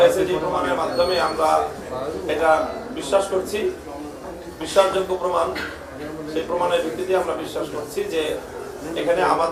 যে প্রমাণের মাধ্যমে আমরা এটা বিশ্বাস করছি, বিশ্বাসযোগ্য প্রমাণ। সেই প্রমাণের ভিত্তিতে আমরা বিশ্বাস করছি যে এখানে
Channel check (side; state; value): both; identical; correlation 1.00